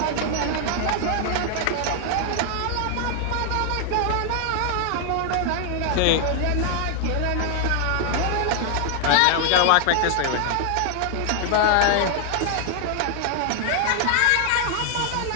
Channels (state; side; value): different; both; correlation 0.00